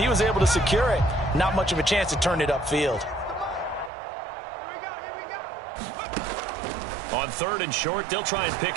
was able to secure it, not much of a chance to turn it upfield. On 3rd and short, they'll try and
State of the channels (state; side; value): drops out; left; at 3.9 s